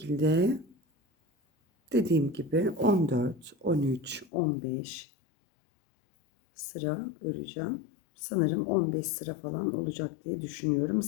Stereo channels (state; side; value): drops out; right; at 4.2 s